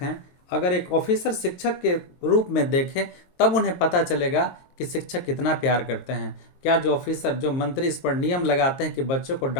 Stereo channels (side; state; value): right; late; 22 ms